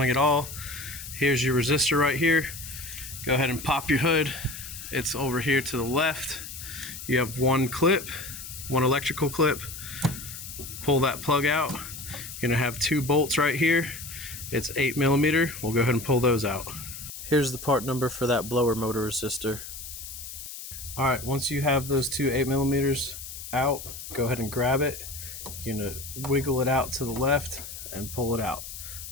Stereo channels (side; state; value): left; noise; hiss, 11 dB below the sound